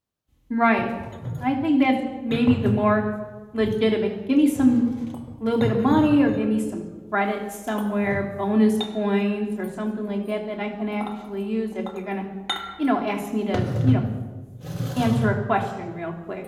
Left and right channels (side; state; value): both; identical; correlation 1.00